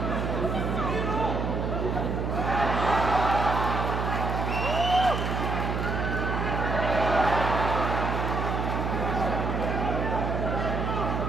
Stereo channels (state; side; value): noise; right; hum, 1 dB below the sound